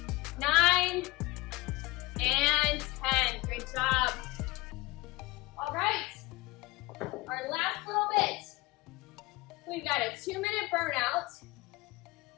9, and 10. Great job. All right, our last little bit. We've got a 2-minute burnout.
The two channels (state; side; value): quieter; right; 22.0 dB